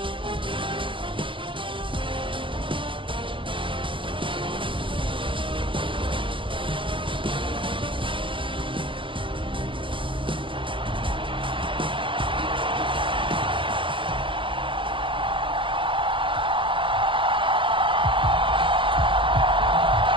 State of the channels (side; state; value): left; late; 0.25 ms